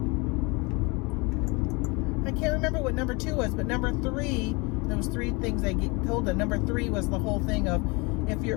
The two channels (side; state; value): right; quieter; 27.9 dB